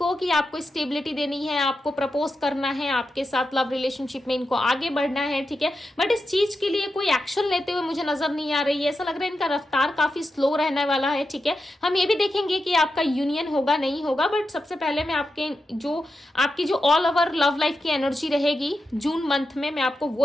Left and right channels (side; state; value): both; normal; correlation 0.89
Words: कि आपको स्टेबिलिटी देनी है, आपको प्रपोज करना है, आपके साथ लव रिलेशनशिप में इनको आगे बढ़ना है, ठीक है, बट इस चीज के लिए कोई एक्शन लेते हुए मुझे नजर नहीं आ रही है। ऐसा लग रहा है इनका रफ्तार काफी स्लो रहने वाला है, ठीक है। हम ये भी देखेंगे कि आपका यूनियन होगा नहीं होगा, बट सबसे पहले मैं आपकी जो ऑल ओवर लव लाइफ की एनर्जी रहेगी जून मंथ में, मैं आपको